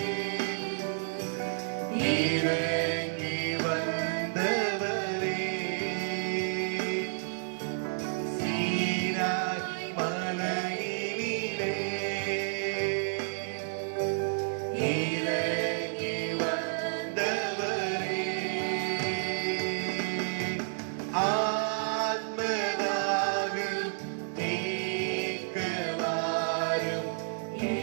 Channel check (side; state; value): left; silent; digital silence